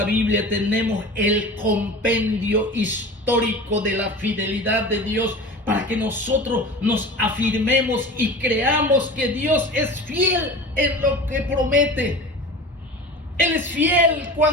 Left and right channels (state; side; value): normal; both; correlation 0.35